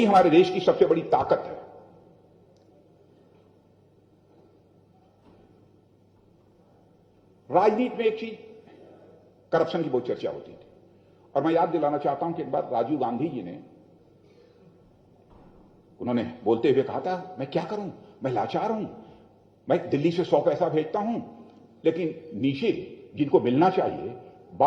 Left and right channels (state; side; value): identical; both; correlation 1.00